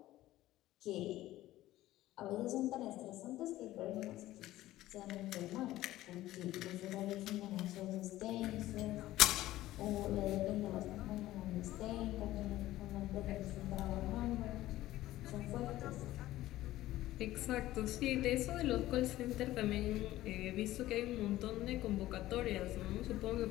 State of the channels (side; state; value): right; quieter; 15.5 dB